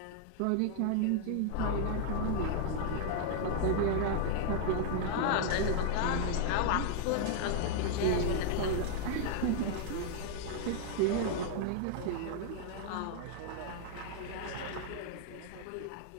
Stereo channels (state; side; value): different; both; correlation 0.00